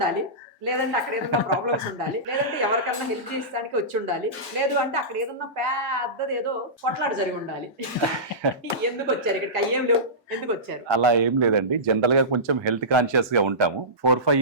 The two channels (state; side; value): normal; both; correlation -0.19